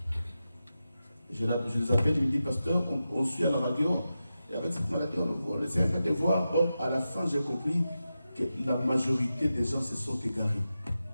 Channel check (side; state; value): both; inverted; correlation -0.91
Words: Je les appelle, je me dis, pasteur, on suit à la radio, et avec cette maladie, on essaie un peu de voir. Or, à la fin, j'ai compris que la majorité des gens se sont égarés.